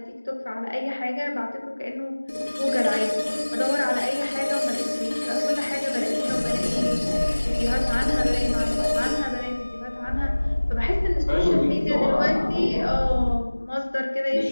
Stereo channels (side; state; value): both; inverted; correlation -1.00